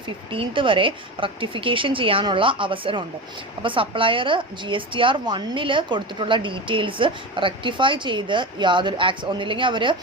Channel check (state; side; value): normal; both; correlation 0.24